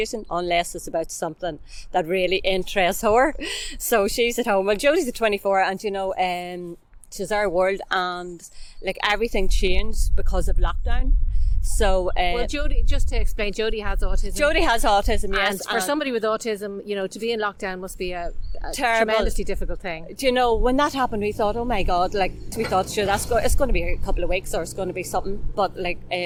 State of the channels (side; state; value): both; identical; correlation 1.00